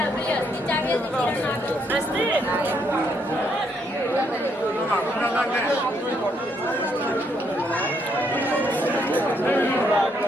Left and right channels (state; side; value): normal; both; correlation 0.73